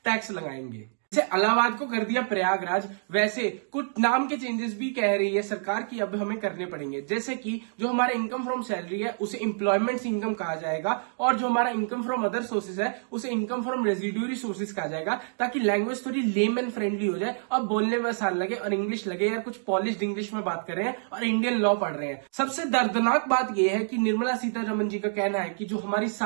टैक्स लगाएंगे। जैसे इलाहाबाद को कर दिया प्रयागराज, वैसे कुछ नाम के चेंजेस भी कह रही है सरकार की अब हमें करने पड़ेंगे। जैसे कि जो हमारा इनकम फ्रॉम सैलरी है उसे एम्प्लॉयमेंट इनकम कहा जाएगा, और जो हमारा इनकम फ्रॉम अदर सोर्सेज है उसे इनकम फ्रॉम रेजिड्यूरी सोर्सेज कहा जाएगा, ताकि लैंग्वेज थोड़ी लेम एंड फ्रेंडली हो जाए और बोलने में आसान लगे और इंग्लिश लगे यार कुछ पॉलिश्ड इंग्लिश में बात कर रहे हैं और इंडियन लॉ पढ़ रहे हैं। सबसे दर्दनाक बात यह है कि निर्मला सीतारमण जी का कहना है कि जो हमारी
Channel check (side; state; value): left; silent; digital silence